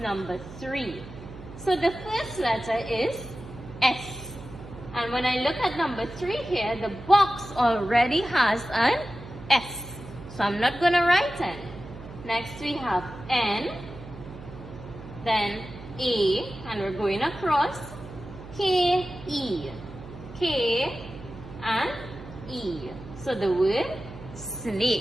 3. So the first letter is S. And when I look at number 3 here, the box already has an S. So I'm not going to write N. Next we have N, then A, and we're going across, K-E, K and E. So the word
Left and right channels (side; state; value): right; noise; hum, 15 dB below the sound